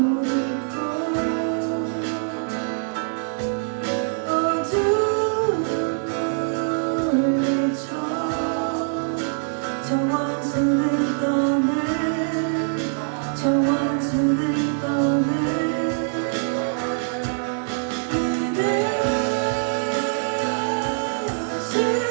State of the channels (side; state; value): left; silent; 61 dB below the other